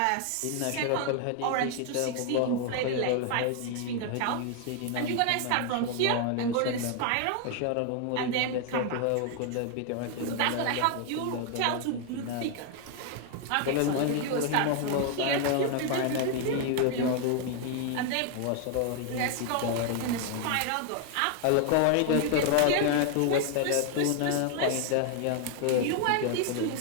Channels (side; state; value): both; different; correlation 0.01